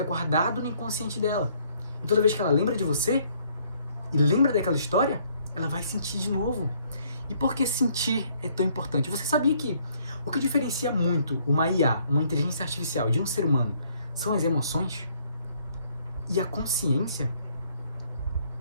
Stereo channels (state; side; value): inverted; both; correlation -0.65